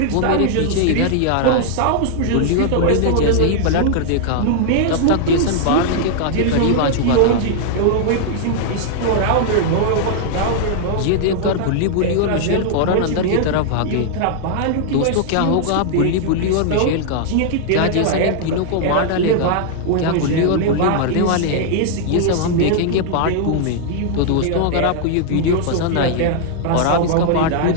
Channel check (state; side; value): different; both; correlation -0.01